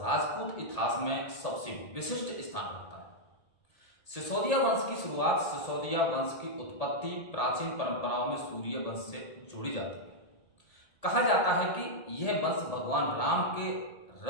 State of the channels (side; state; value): right; late; 1.8 ms